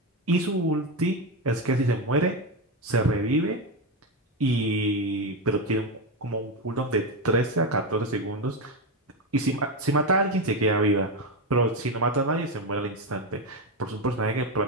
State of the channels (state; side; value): normal; both; correlation 0.11